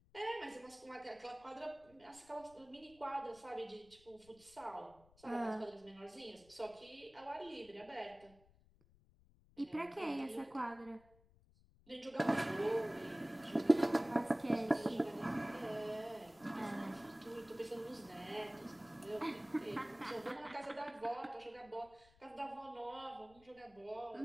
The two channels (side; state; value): left; noise; rumble, 27 dB below the sound